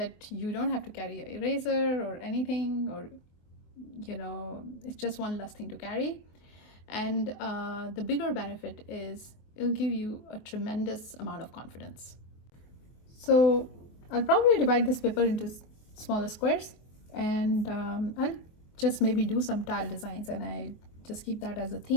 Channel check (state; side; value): late; right; 23 ms